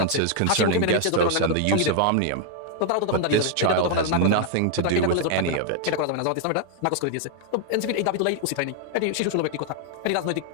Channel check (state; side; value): different; both; correlation 0.00